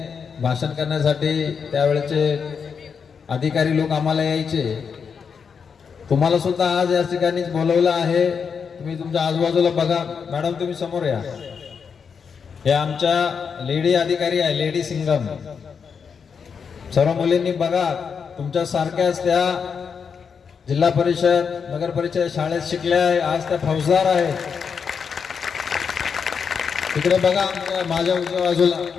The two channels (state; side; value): quieter; right; 6.3 dB